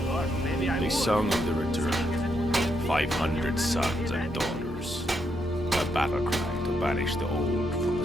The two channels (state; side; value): normal; both; correlation 0.79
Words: Or maybe I they would. sung of the return. 500 sons and daughters. A battle cry to banish the old from the